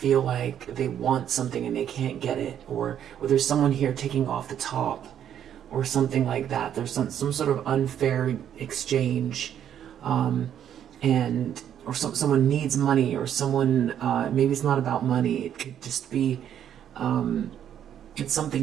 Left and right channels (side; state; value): left; quieter; 9.7 dB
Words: like they want something and they can't get it, or there's someone here taking off the top, or something like that. There's some sort of unfair exchange, someone needs money, or someone, maybe it's not about money, it could just be it's